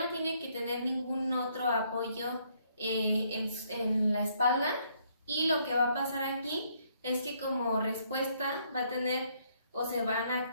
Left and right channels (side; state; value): both; inverted; correlation -0.69